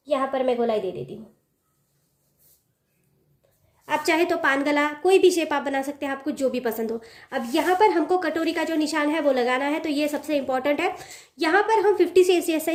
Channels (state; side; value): identical; both; correlation 1.00